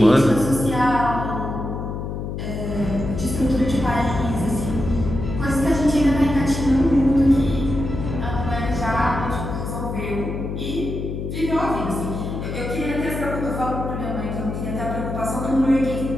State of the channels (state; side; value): noise; left; hum, 5 dB below the sound